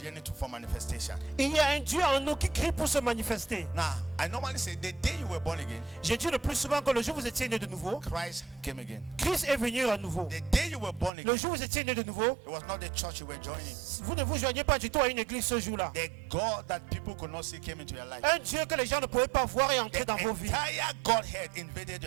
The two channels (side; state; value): left; drops out; at 11.1 s